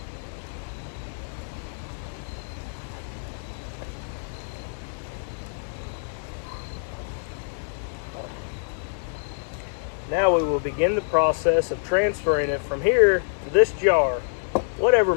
Now we will begin the process of transferring it from here to this jar, whatever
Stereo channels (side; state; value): right; silent; digital silence